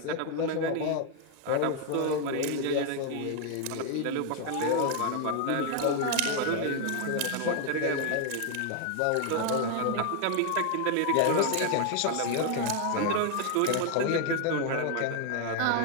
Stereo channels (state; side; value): different; both; correlation 0.01